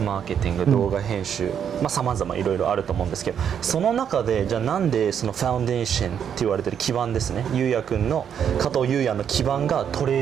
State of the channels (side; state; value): left; quieter; 8.3 dB